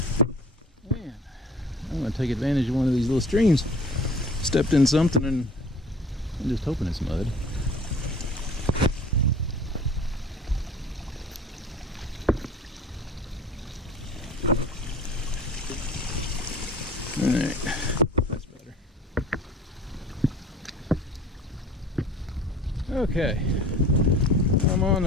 Man, I'm gonna take advantage of one of these little streams. Stepped in something and I'm just hoping it's mud. Alright, that's better. Okay, I'm on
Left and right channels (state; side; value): normal; both; correlation 0.46